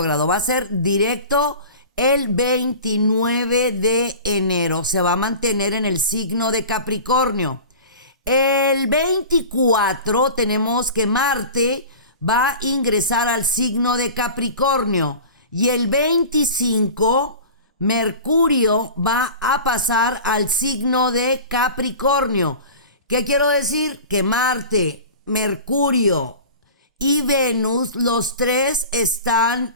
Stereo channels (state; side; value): inverted; both; correlation -0.37